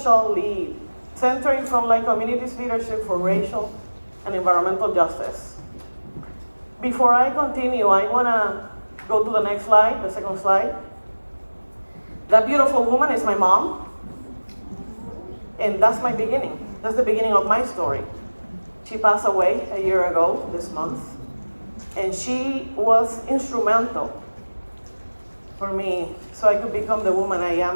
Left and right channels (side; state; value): both; inverted; correlation -1.00